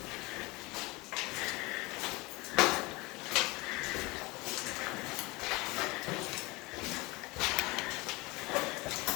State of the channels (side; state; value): right; quieter; 23.6 dB